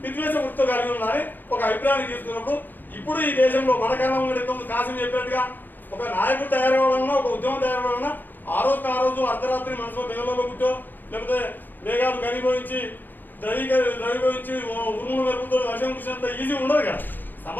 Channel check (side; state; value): right; late; 0.089 ms